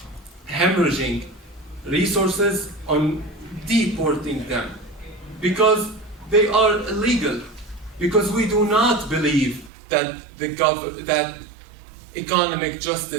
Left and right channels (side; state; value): left; drops out; at 9.7 s